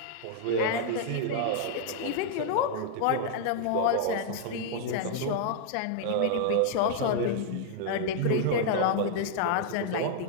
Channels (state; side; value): different; both; correlation -0.01